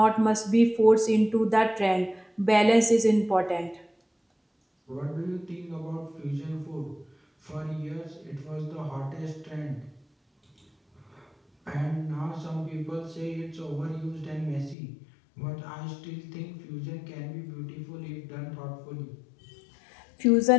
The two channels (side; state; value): right; drops out; at 14.8 s